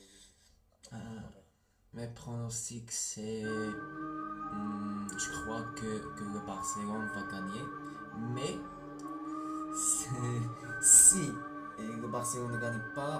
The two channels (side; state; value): both; identical; correlation 1.00